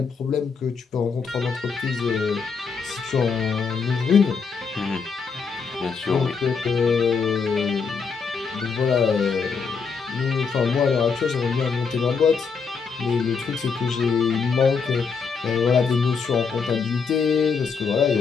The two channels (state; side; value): quieter; right; 5.4 dB